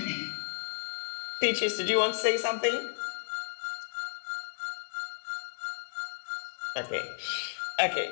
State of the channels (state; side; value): silent; right; 56 dB below the other